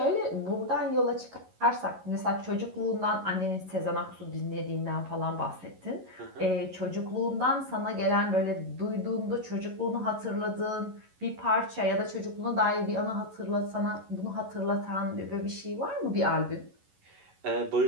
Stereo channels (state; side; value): late; left; 11 ms